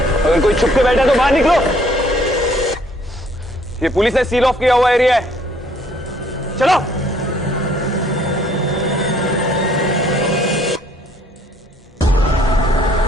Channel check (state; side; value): normal; both; correlation 0.62